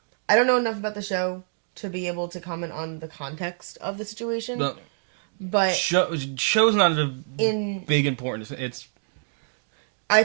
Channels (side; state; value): left; silent; digital silence